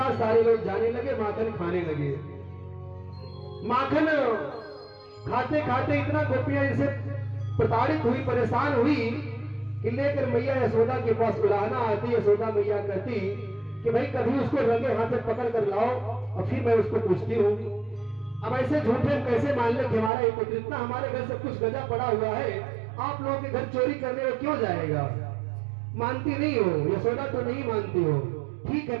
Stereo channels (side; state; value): left; drops out; at 20.1 s